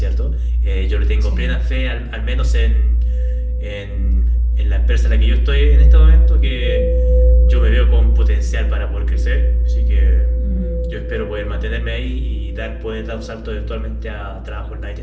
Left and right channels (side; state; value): both; identical; correlation 1.00